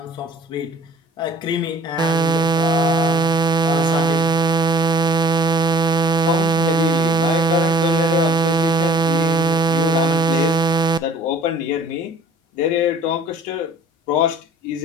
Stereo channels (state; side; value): normal; both; correlation 0.50